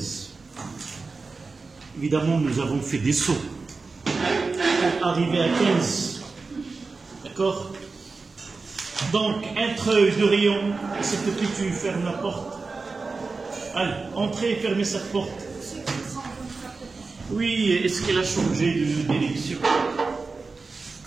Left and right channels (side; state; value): left; quieter; 4.1 dB